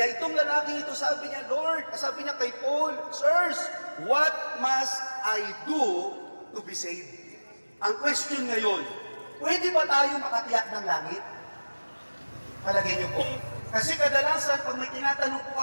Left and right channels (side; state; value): both; inverted; correlation -1.00